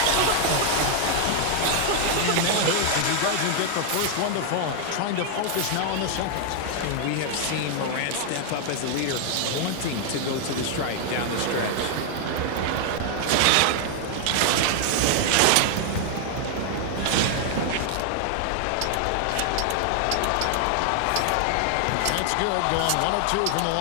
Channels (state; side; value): different; both; correlation 0.00